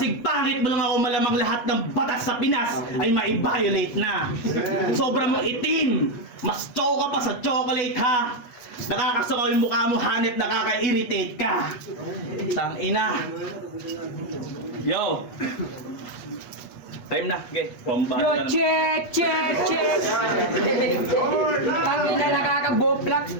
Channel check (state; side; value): late; right; 8.3 ms